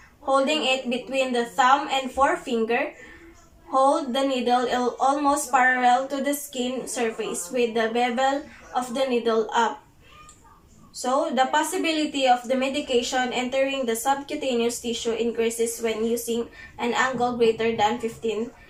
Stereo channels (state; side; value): identical; both; correlation 1.00